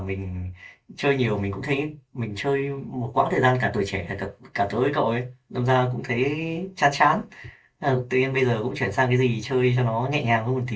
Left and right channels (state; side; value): identical; both; correlation 1.00